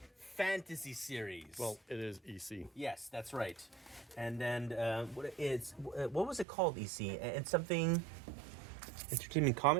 fantasy series. Well, it is EC. Yes, that's right. And then what was it called? EC and something entertainment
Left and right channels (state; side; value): drops out; left; at 6.5 s